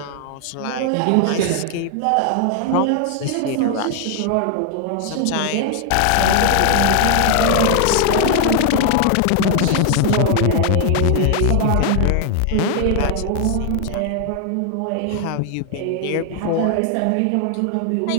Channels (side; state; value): both; different; correlation 0.01